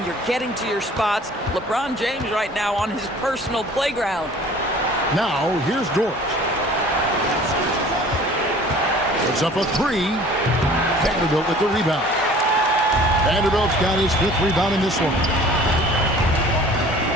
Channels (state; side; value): normal; both; correlation 0.48